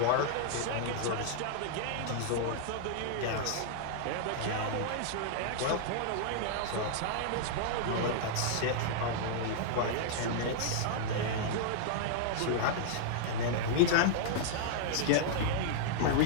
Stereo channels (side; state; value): both; different; correlation -0.01